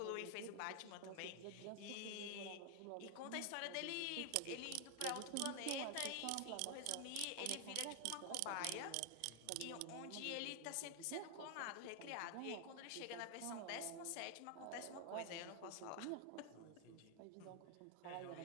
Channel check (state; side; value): different; both; correlation 0.00